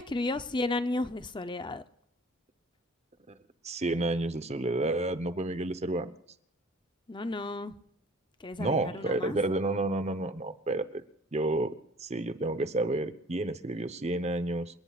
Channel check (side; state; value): both; normal; correlation 0.50